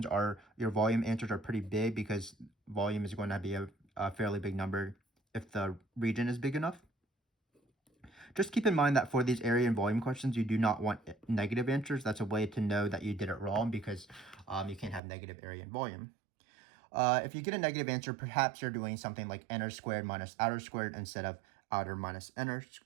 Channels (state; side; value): drops out; left; at 15.0 s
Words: are pretty big, because volume is going to be a fairly big number if the region is big enough. Just keep in mind that for these area and volume questions, you do not want negative answers. That's a way to know that you did it wrong, because you can't have negative area and volume. If you get a negative answer, perhaps you're doing something like inner squared minus outer squared instead of outer